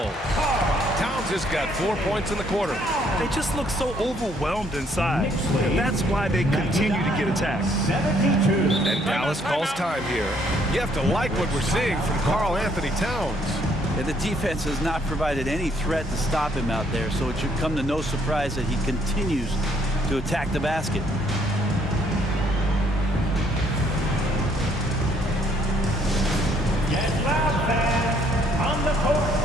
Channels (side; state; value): both; normal; correlation 0.67